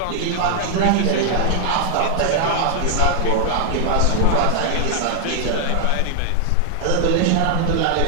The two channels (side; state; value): both; different; correlation -0.01